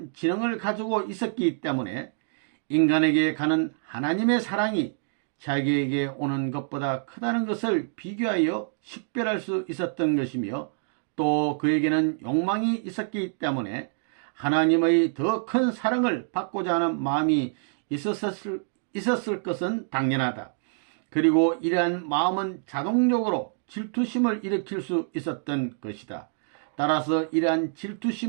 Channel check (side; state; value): left; silent; digital silence